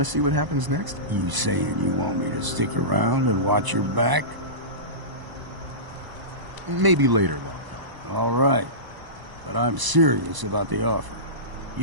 to see what happens next? You saying you want me to stick around and watch your back? Maybe later, Longfellow. All right. But I'm serious about the offer.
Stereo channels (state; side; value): late; left; 1.0 ms